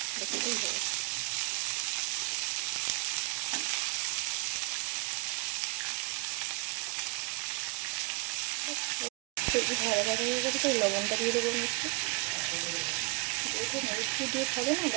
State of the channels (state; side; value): quieter; left; 29.9 dB